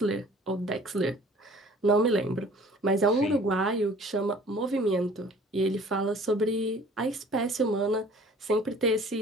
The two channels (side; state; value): both; normal; correlation 0.50